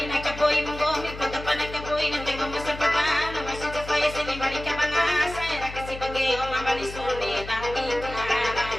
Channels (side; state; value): left; noise; hum, 12 dB below the sound